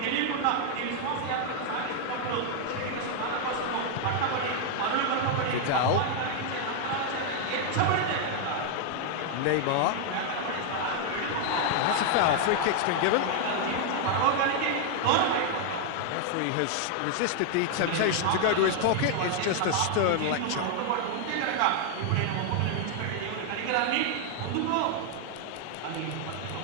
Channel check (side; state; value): both; different; correlation 0.00